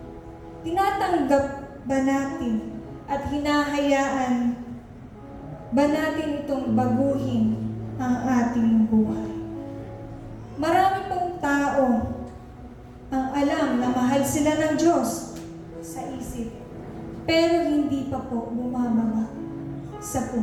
tinatanggap ba natin at hinahayaan ba natin itong baguhin ang ating buhay? Marami pong tao ang alam na mahal sila ng Diyos sa isip, pero hindi pa po bumababa sa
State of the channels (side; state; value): both; identical; correlation 1.00